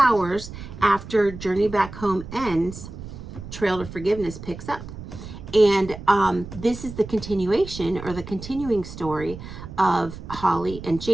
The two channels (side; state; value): right; noise; rumble, 12 dB below the sound